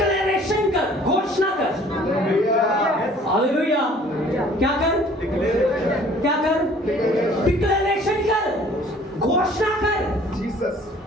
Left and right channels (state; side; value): normal; both; correlation 0.53